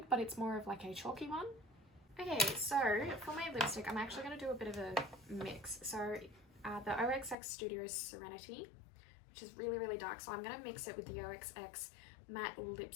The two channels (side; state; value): right; drops out; at 7.4 s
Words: but it's more of like a chalky one. Okay, so for my lipstick, I'm actually going to do a bit of a mix. So the OXX Studio Serenity, which is really, really dark, so I'm going to mix it with the OXX Matte